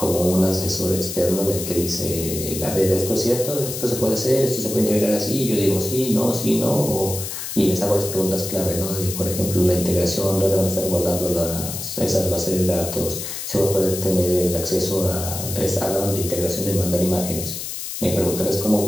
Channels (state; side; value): noise; left; hiss, 7 dB below the sound